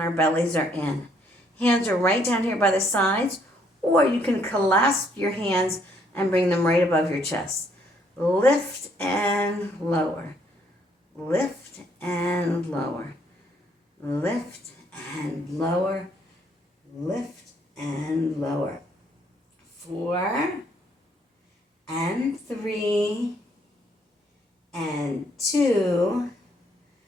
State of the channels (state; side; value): normal; both; correlation 0.68